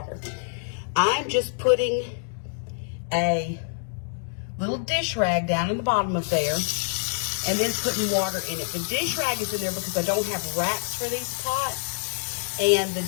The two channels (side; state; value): right; silent; digital silence